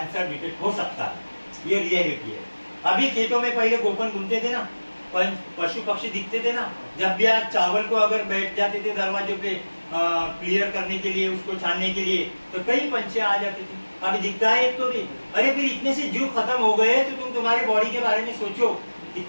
डिटेक्ट हो सकता है। ये रियलिटी है। अभी खेतों में पहले गोपन घूमते थे ना, पशु पक्षी दिखते थे ना। जब भी आज चावल को अगर बैठ जाते थे दरवाजों पे क्लियर करने के लिए, उसको छानने के लिए, तो कई पंछी आ जाते थे। अभी दिखता है एक तो भी। अरे फिर इतने से जीव खत्म हो गए तो तुम तुम्हारी बॉडी के बारे में सोचो,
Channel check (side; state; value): both; inverted; correlation -1.00